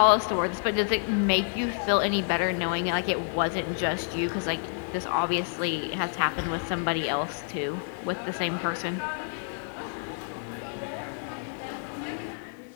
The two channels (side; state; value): right; silent; 59 dB below the other